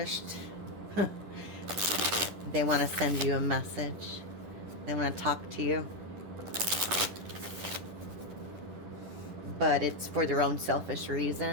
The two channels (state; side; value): late; left; 10 ms